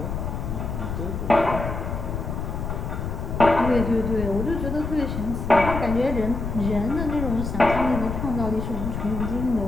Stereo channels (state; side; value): noise; left; rumble, 4 dB below the sound